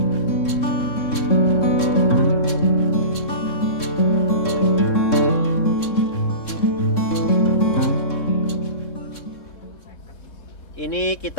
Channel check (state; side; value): late; right; 3.7 ms